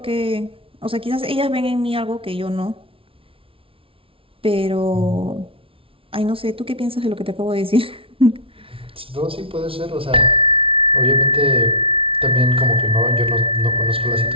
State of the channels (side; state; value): left; late; 0.26 ms